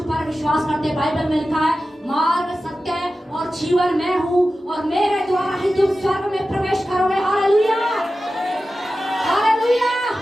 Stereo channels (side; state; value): both; normal; correlation 0.94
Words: पर विश्वास करते, बाइबल में लिखा है मार्ग, सत्य और जीवन मैं हूँ और मेरे द्वारा ही तुम स्वर्ग में प्रवेश करोगे। Hallelujah, hallelujah.